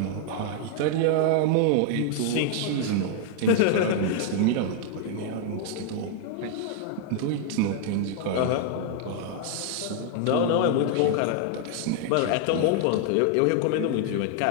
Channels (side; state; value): both; different; correlation 0.00